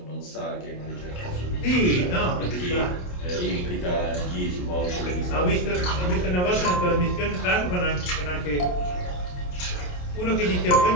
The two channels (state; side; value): late; right; 28 ms